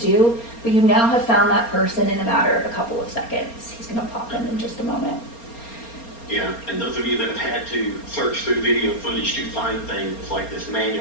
but you now have found that person in a matter of a couple of seconds. He's going to pop in just a moment. Yeah, and those of you that have had to search through video footage to find things like this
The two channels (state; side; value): late; right; 4.3 ms